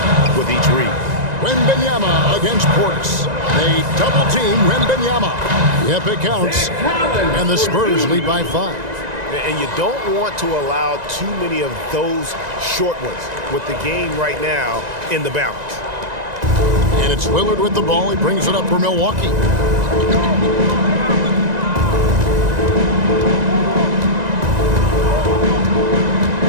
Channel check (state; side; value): late; left; 1.9 ms